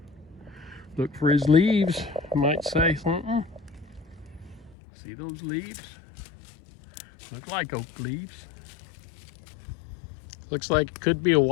Look for his leaves. Might say something. See those leaves? Look like oak leaves. Looks like it could be a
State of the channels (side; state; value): right; drops out; at 4.8 s